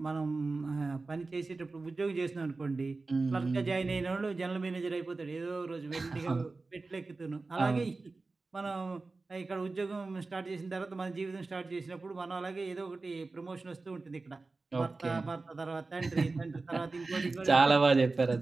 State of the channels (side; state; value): left; quieter; 3.6 dB